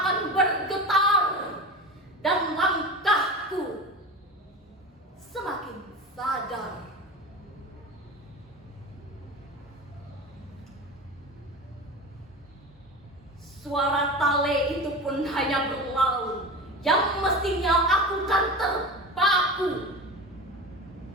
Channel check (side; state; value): both; normal; correlation 0.29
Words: bergetar dan langkahku semakin sadar. Suara tale itu pun hanya berlalu, yang mestinya aku kan terpaku.